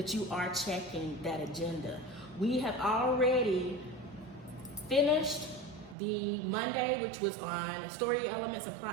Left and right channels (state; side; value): drops out; left; at 6.0 s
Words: you are checking that agenda. We have already finished the Monday, which was on story elements and